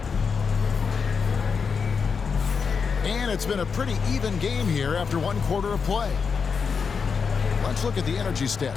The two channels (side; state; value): right; quieter; 5.8 dB